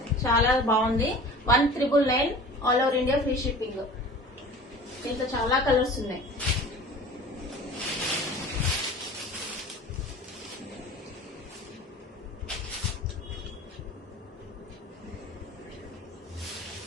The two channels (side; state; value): both; normal; correlation 0.41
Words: చాలా బాగుంది. 1999 all over India free shipping. దీంట్లో చాలా కలర్స్ ఉన్నాయి.